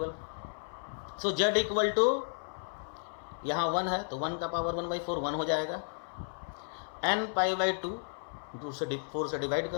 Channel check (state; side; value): silent; right; 56 dB below the other